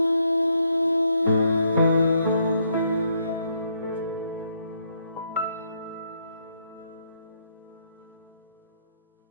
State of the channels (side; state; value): both; inverted; correlation -0.73